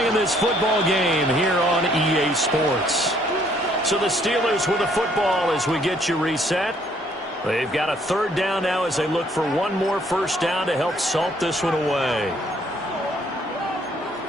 in this football game here on EA Sports. So the Steelers with the football as we get you reset. They've got a third down now as they look for one more first down to help salt this one away.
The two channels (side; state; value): both; normal; correlation 0.65